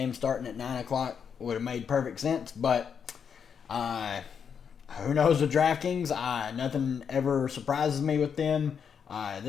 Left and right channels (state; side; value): quieter; right; 7.1 dB